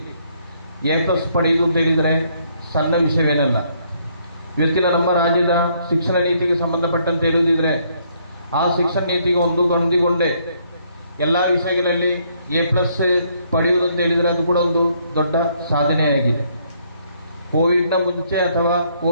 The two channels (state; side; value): inverted; both; correlation -0.69